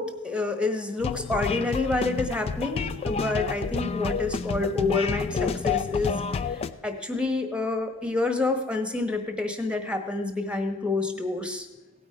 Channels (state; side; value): quieter; right; 3.3 dB